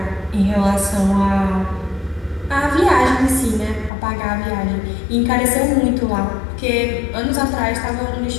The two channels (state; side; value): drops out; right; at 3.9 s